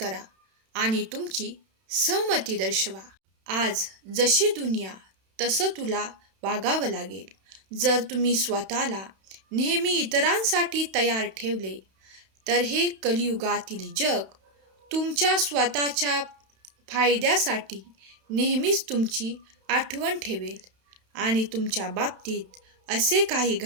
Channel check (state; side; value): late; left; 31 ms